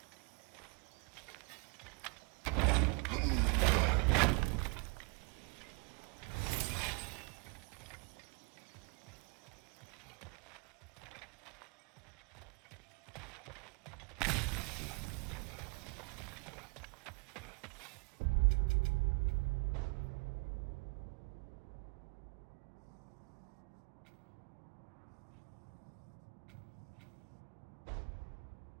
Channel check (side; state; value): left; quieter; 31.0 dB